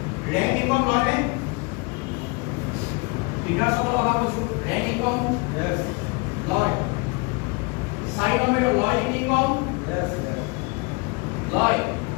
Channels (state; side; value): quieter; right; 28.8 dB